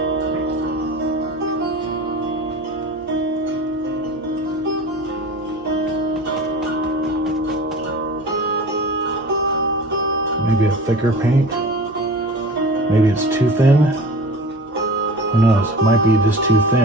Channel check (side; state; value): both; normal; correlation 0.37